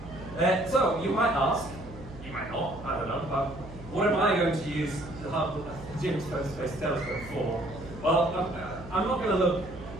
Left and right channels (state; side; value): noise; right; hum, 16 dB below the sound